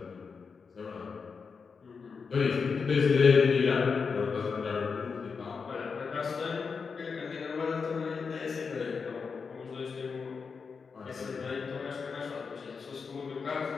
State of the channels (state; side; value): quieter; right; 5.4 dB